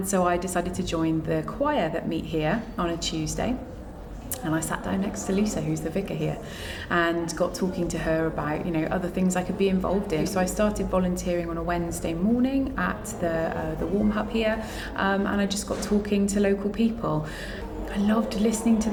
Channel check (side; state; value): both; identical; correlation 1.00